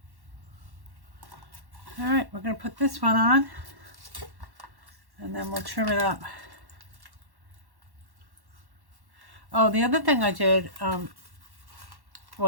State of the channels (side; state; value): left; late; 1.1 ms